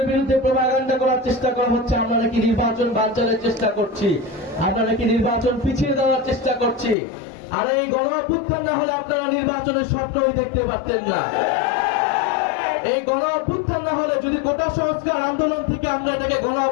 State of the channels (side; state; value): right; drops out; at 7.0 s